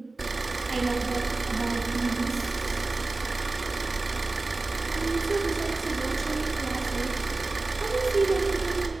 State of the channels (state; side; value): quieter; left; 3.4 dB